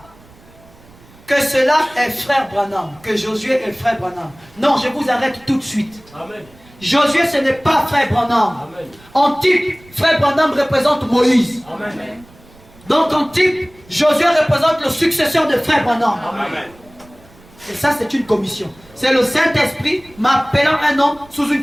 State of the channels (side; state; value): right; noise; rumble, 26 dB below the sound